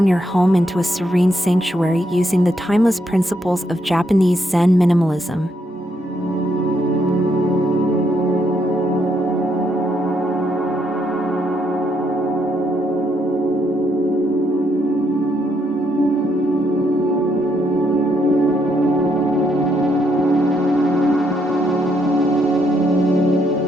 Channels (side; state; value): both; normal; correlation 0.75